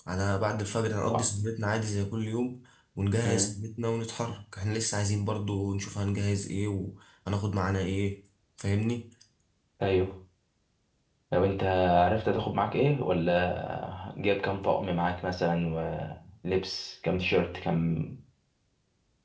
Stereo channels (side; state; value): both; identical; correlation 1.00